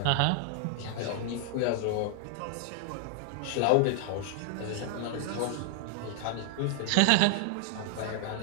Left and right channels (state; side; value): different; both; correlation 0.00